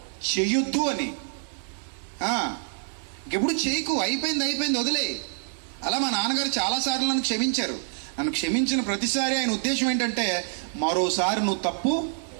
చెయ్యొద్దు అని. ఇంకెప్పుడు చేయకు, అయిపోయింది వదిలే. అలా మా నాన్నగారు చాలాసార్లు నన్ను క్షమించారు. నన్ను క్షమించిన ప్రతిసారి ఆయన ఉద్దేశం ఏంటంటే మరోసారి నువ్వు తప్పు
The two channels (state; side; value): silent; left; 61 dB below the other